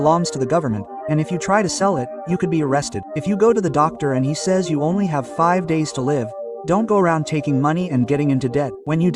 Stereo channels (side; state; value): both; identical; correlation 1.00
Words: to the government, and if you try to sell it, you could be arrested. If you go to the doctor and he says you only have 5 days to live, don't go around taking money and getting into debt. When you